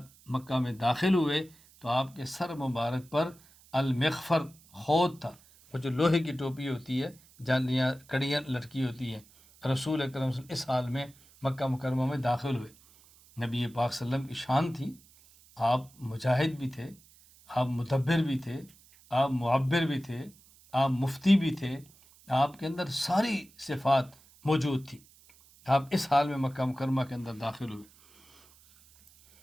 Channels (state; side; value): noise; right; hiss, 27 dB below the sound